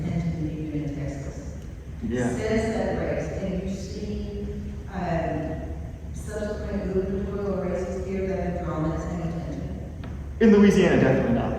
to even in Texas. Yeah. Since that race, can you see subsequent gubernatorial races here that have drawn that same attention? In Louisiana, definitely not.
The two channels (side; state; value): both; identical; correlation 1.00